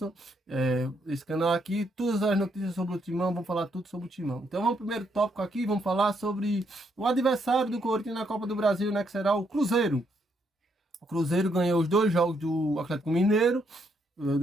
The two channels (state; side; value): normal; both; correlation 0.75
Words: esse canal aqui, todas as notícias sobre o Timão, vamos falar tudo sobre o Timão. Então vamos pro primeiro tópico aqui, vamos falar sobre o adversário do Corinthians na Copa do Brasil, né, que será o Cruzeiro. O Cruzeiro ganhou os 2 jogos do Atlético Mineiro.